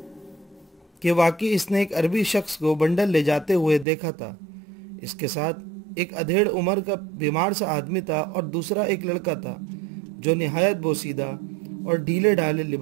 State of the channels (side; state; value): left; drops out; at 3.9 s